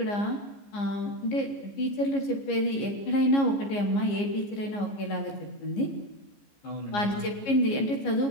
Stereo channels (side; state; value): right; late; 15 ms